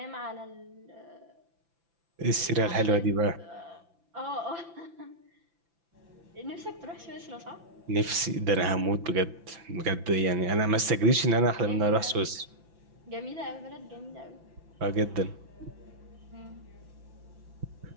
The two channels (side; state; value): left; late; 5.9 ms